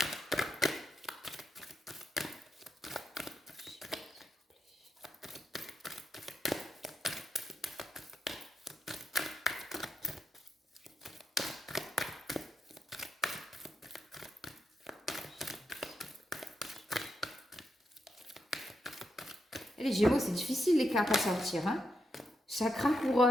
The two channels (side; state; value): both; normal; correlation 0.84